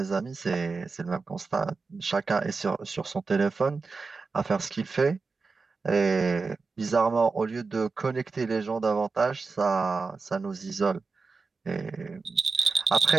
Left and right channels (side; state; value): left; quieter; 4.4 dB